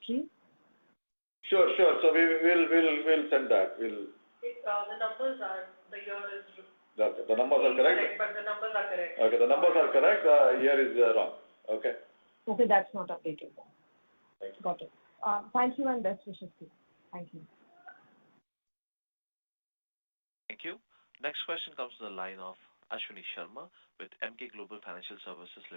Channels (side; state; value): both; inverted; correlation -1.00